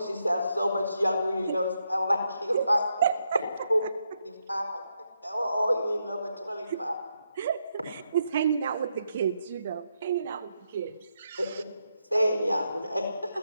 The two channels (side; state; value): both; inverted; correlation -0.81